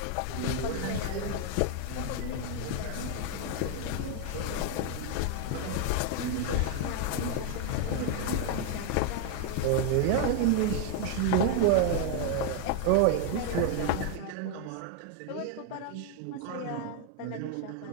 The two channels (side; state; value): both; different; correlation 0.00